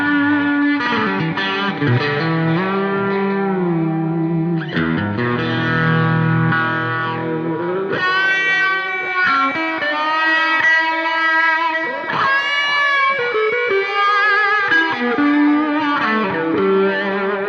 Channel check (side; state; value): both; identical; correlation 1.00